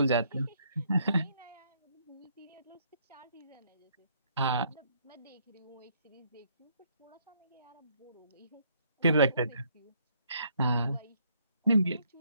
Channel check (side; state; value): both; inverted; correlation -0.68